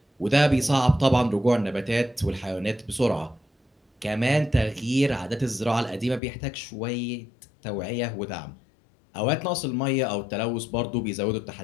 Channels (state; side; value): drops out; right; at 6.2 s